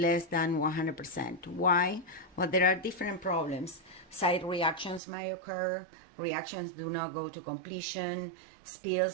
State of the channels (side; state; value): left; drops out; at 5.0 s